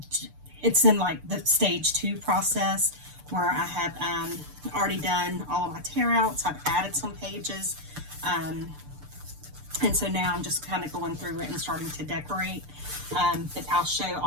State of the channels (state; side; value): late; left; 6.8 ms